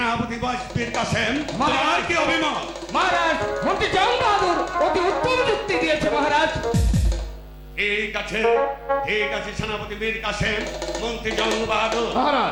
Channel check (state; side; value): identical; both; correlation 1.00